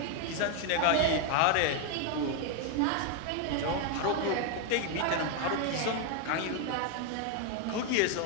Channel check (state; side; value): different; both; correlation 0.01